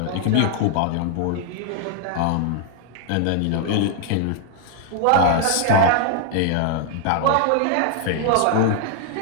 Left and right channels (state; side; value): different; both; correlation 0.00